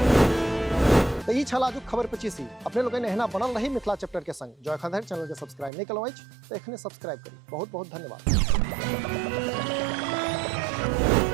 तो ई छल आजुक खबर 25। अपने लोग एहना बनल रही मिथिला चैप्टर के संग। जो एखन धरि चैनल के सब्सक्राइब नहीं कलौ अछि तो एखने सब्सक्राइब करी। बहुत बहुत धन्यवाद।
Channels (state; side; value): drops out; left; at 5.7 s